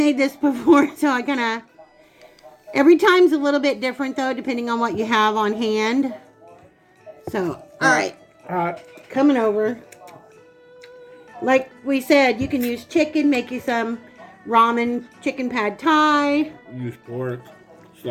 this before, so I kind of... Every time's a little bit different, though, depending on what you have on hand. So, alright. Coming over. Like we said, you can use chicken, make you some ramen, chicken pad thai. Use pork,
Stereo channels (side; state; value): both; identical; correlation 1.00